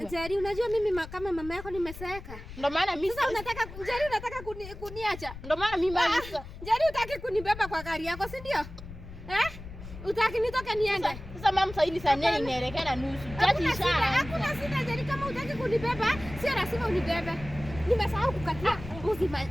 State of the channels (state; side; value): noise; left; rumble, 13 dB below the sound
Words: Jeri, unajua mimi kama mama yako nimeseka. Ndio maana mimi sasa unataka kuniacha. Ndio maana mimi sasa. Jeri, utaki kunibeba kwa gari yako, si ndio? Utaki nitoke niende. Sasa mama sasa hivi saa 4 inaelekea na nusu. Hakuna shida Jeri, kama utaki kunibeba, sio lazima unibebe. Nimesahau kukatia mbuzi